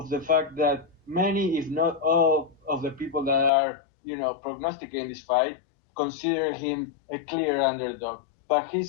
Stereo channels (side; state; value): right; drops out; at 3.5 s